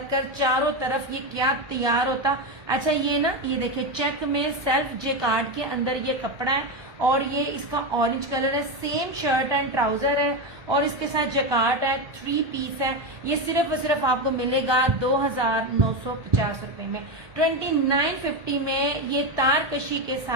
चारों तरफ ये क्या तैयार होता। अच्छा ये ना, ये देखिए चेक में सेल्फ जेकार्ड के अंदर ये कपड़ा है और ये इसका ऑरेंज कलर है। सेम शर्ट एंड ट्राउजर है और इसके साथ जकार्ड है, 3 पीस है। ये सिर्फ और सिर्फ आपको मिलेगा 2950 रुपए में, 2950 में। ये तारकशी के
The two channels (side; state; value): left; late; 1.2 ms